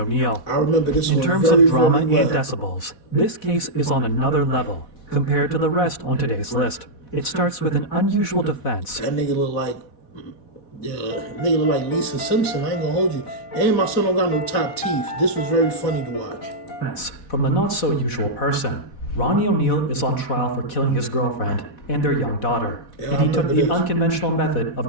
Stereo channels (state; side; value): late; right; 4.1 ms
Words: I remember this In one terms very, of drama very and well. decibels, this case is on another level compared to the rest on today's list. It starts with an unusual defense. That nigga look like, Lisa Simpson. I ain't gonna hold you. And my son don't got no top teeth. This was very funny to watch. From the not-so-usual person. Ronnie O'Neill is on trial for killing his girlfriend and their young daughter, Yeah, and he I took remember the this. unconventional method